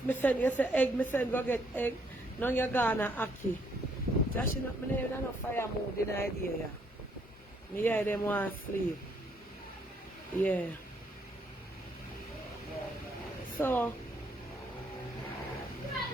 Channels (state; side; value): normal; both; correlation 0.69